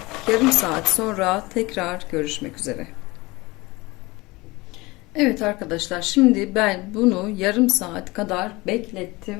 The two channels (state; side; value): quieter; right; 22.6 dB